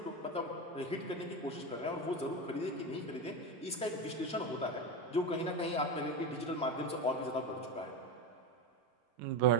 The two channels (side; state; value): both; normal; correlation 0.18